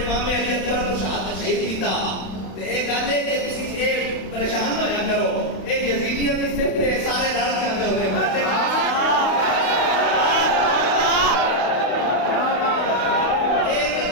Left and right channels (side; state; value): right; late; 32 ms